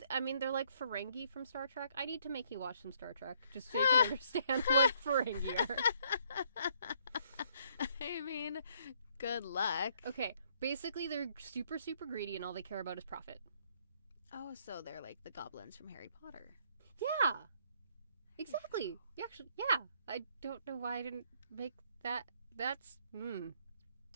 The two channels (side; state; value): both; inverted; correlation -0.67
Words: I mean, they're like Ferengi from Star Trek. I need to make you watch some Star Trek just so you can understand what Ferengi are. I mean, good luck. Okay. Basically, they're super, super greedy, and all they care about is profit. Oh, so they're like the goblins from Harry Potter. Yeah. Exactly. Actually, yeah. I don't know why I didn't make that. That's...